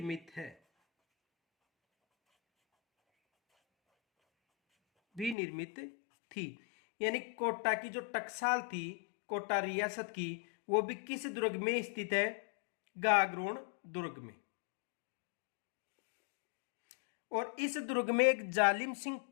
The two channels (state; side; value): drops out; right; at 5.4 s